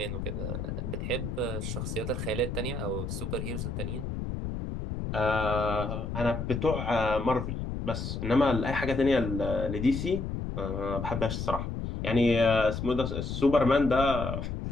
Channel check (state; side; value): noise; left; rumble, 4 dB below the sound